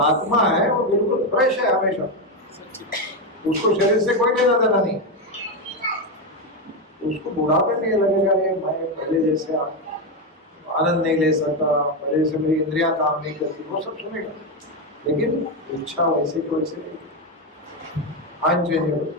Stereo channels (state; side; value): normal; both; correlation 0.08